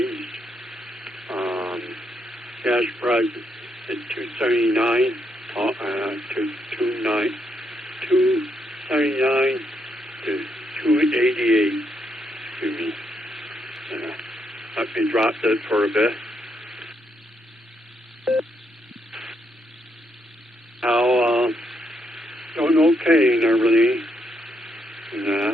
Gas price is $2.79 to $2.79 to $2.88. Excuse me. I've been dropped it for a bit. Now, doing okay and everything.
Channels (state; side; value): normal; both; correlation 0.78